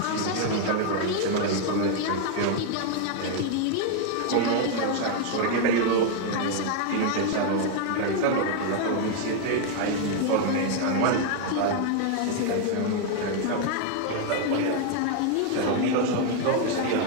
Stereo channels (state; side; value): different; both; correlation 0.00